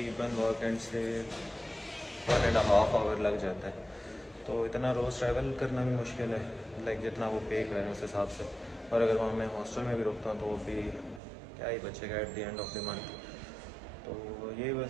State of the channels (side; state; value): left; drops out; at 11.2 s